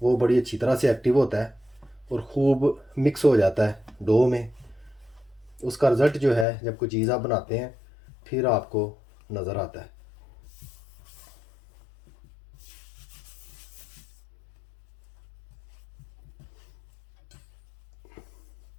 बड़ी अच्छी तरह से एक्टिव होता है और ख़ूब मिक्स हो जाता है डो में। उसका रिज़ल्ट जो है जब कोई चीज़ आप बनाते हैं फिर आपको नज़र आता है।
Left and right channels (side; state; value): right; drops out; at 6.5 s